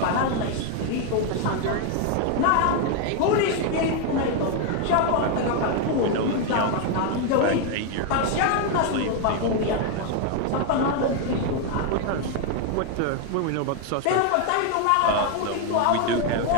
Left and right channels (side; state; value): both; different; correlation 0.01